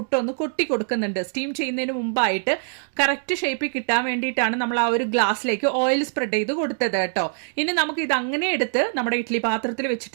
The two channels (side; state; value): left; silent; digital silence